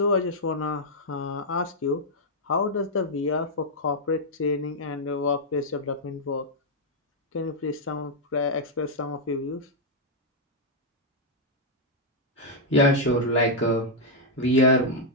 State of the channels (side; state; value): both; normal; correlation -0.04